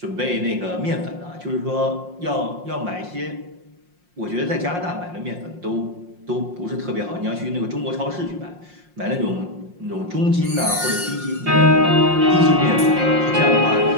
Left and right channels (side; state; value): left; late; 5.6 ms